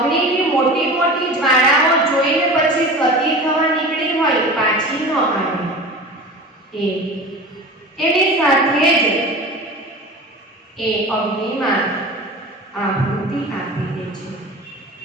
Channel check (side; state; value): both; normal; correlation 0.35